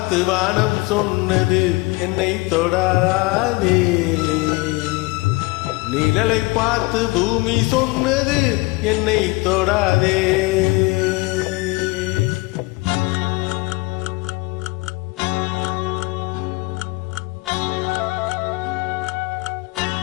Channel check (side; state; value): right; quieter; 23.6 dB